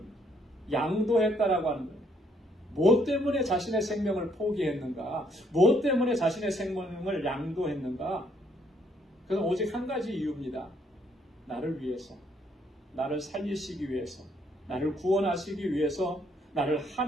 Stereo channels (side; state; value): both; normal; correlation 0.69